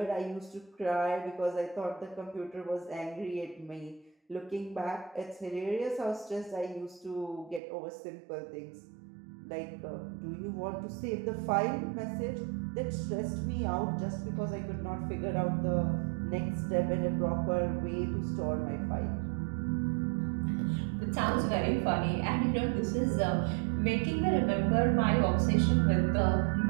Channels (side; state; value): left; drops out; at 7.6 s